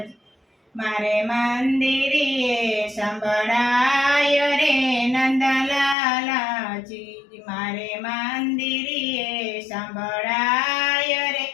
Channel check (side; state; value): right; drops out; at 6.0 s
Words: મારે મંદિરે સંભળાય રે નંદલાલાજી. મારે મંદિરે સંભળાય રે